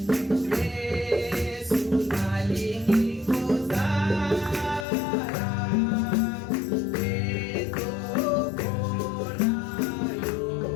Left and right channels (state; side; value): drops out; right; at 4.9 s